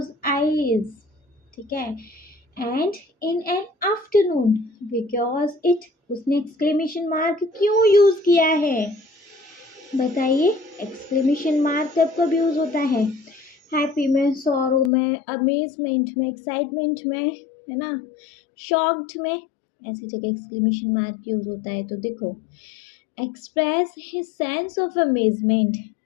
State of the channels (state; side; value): drops out; right; at 14.9 s